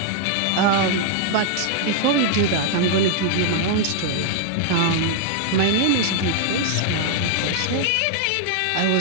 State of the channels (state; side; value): different; both; correlation 0.00